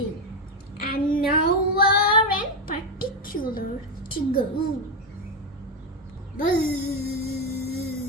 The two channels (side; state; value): both; normal; correlation 0.09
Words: and nowhere in particular to go. Buzz,